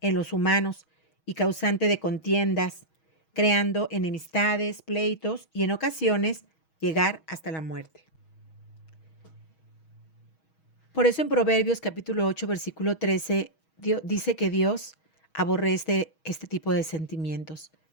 en los humanos y causante de contiendas, creando enemistades, pleitos y en ocasiones llegar hasta la muerte. Por eso en Proverbios capítulo 8, versículo 13, dice que Dios aborrece este tipo de sentimientos.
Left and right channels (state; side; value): late; right; 6.3 ms